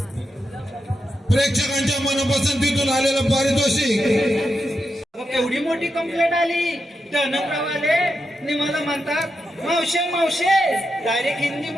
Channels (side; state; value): both; normal; correlation 0.87